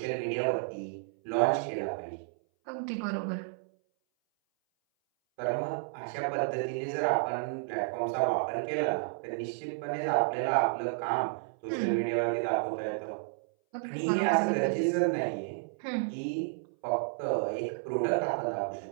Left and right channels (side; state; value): left; silent; 57 dB below the other